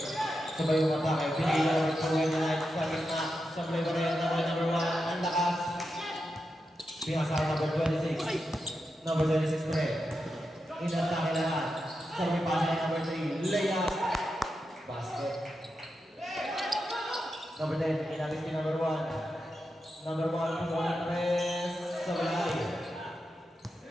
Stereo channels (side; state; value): both; normal; correlation 0.88